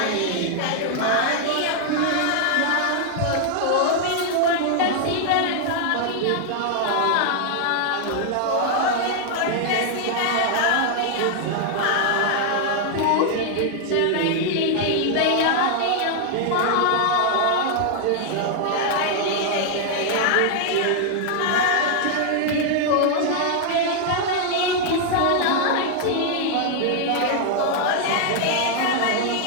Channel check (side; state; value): both; different; correlation 0.00